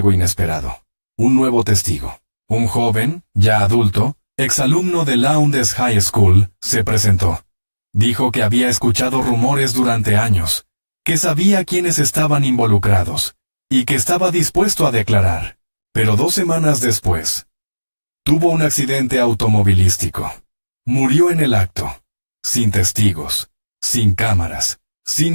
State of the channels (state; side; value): inverted; both; correlation -1.00